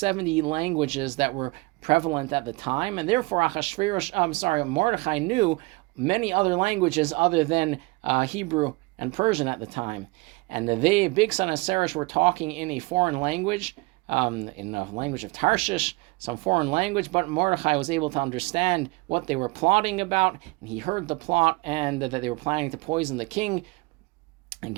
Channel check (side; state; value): left; quieter; 24.7 dB